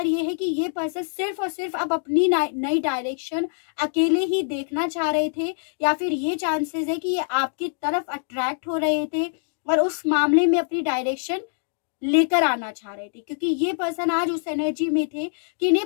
ये है कि ये पर्सन सिर्फ और सिर्फ अब अपनी नई डायरेक्शन अकेले ही देखना चाह रहे थे, या फिर ये चांसेस है कि ये आपकी तरफ अट्रैक्ट हो रहे थे और उस मामले में अपनी डायरेक्शन लेकर आना चाह रहे थे, क्योंकि ये पर्सन आज उस एनर्जी में थे कि इन्हें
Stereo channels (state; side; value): silent; right; digital silence